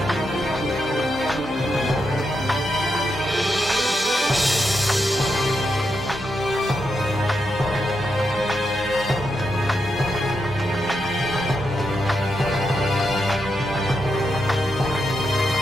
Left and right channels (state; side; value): normal; both; correlation 0.83